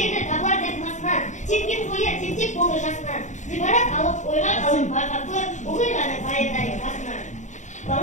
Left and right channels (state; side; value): late; right; 0.35 ms